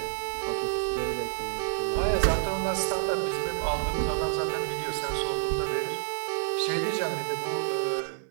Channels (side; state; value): left; silent; digital silence